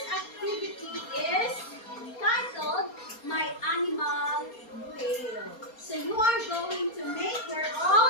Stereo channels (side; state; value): right; late; 4.3 ms